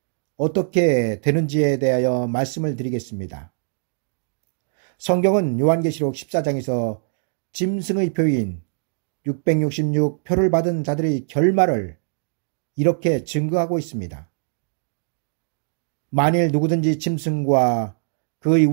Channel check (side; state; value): left; silent; digital silence